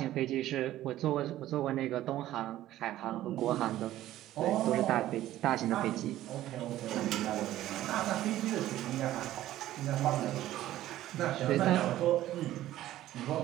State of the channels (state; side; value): quieter; left; 14.1 dB